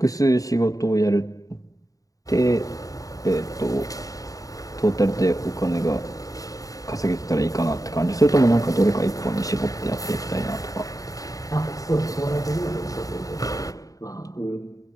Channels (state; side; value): late; right; 0.17 ms